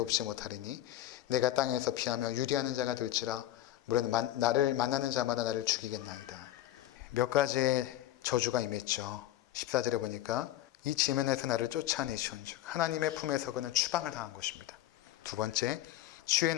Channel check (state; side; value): quieter; right; 13.9 dB